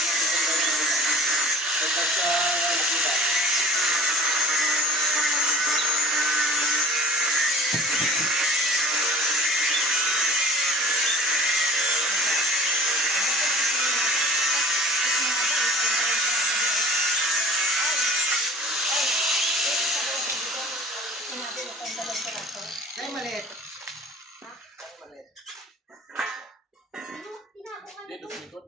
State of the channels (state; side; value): normal; both; correlation 0.44